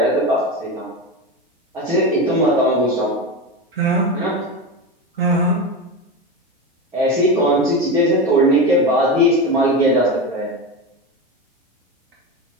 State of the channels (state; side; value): normal; both; correlation 0.20